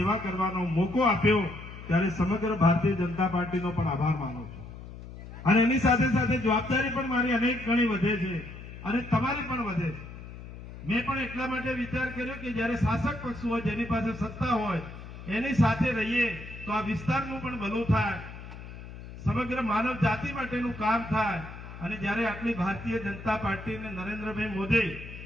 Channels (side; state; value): left; noise; hum, 13 dB below the sound